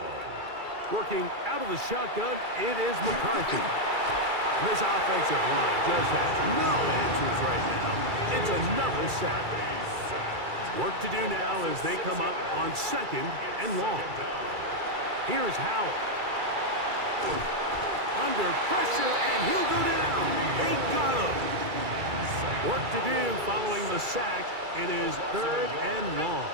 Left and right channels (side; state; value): left; late; 2.3 ms